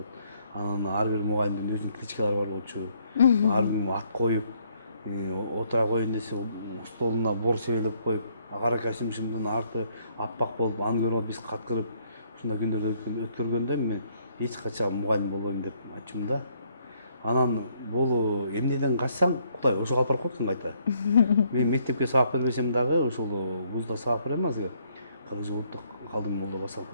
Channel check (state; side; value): inverted; both; correlation -0.69